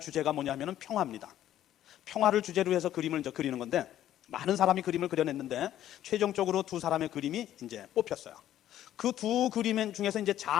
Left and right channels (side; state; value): right; quieter; 12.1 dB